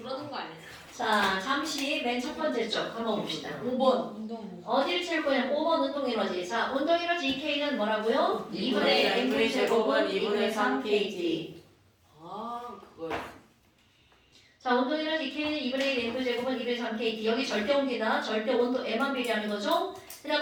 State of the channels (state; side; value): identical; both; correlation 1.00